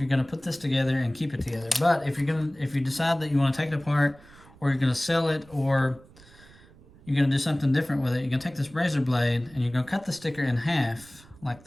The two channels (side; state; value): right; noise; rumble, 24 dB below the sound